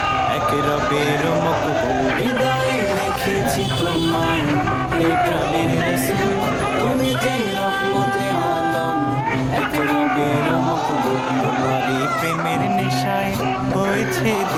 এক রবের মকবুল। হৃদয়ে রেখেছি তোমায় ইয়া প্রাণের রাসূল, তুমি যে রহমতে আলম এক রবের মকবুল। তোমারই প্রেমের নেশায় হয়েছে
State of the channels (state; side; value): identical; both; correlation 1.00